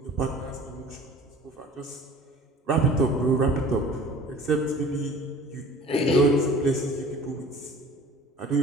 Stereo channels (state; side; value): normal; both; correlation 0.45